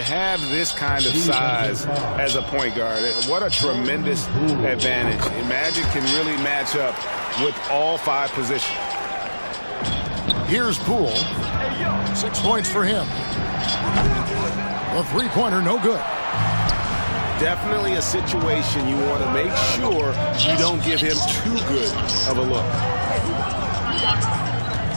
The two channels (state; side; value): inverted; both; correlation -1.00